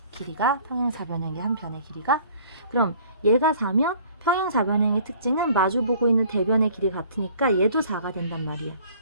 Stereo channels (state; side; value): inverted; both; correlation -0.53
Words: 길이가 평행사변형의 한 변의 길이가. 그럼 얘가 4면 평행사변형의 특징은 마주보고 있는 대변의 길이 같으니까 얘도 4가 된단 말이야.